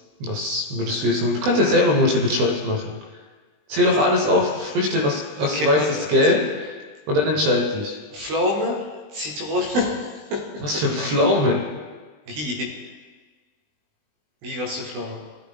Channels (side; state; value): left; late; 20 ms